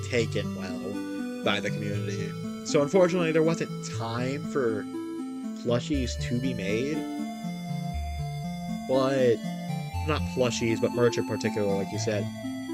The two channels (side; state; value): both; identical; correlation 1.00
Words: taken well by the community. So unfortunately, there wasn't time for plushies to be made. But not plushies, but merch in particular, like you said.